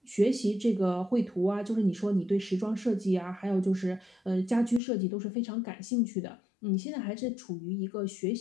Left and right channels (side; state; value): right; drops out; at 4.8 s